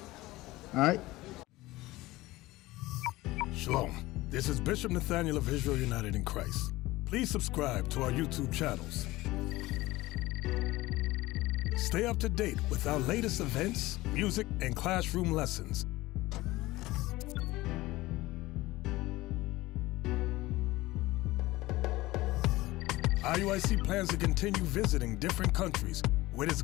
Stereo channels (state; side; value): quieter; right; 18.8 dB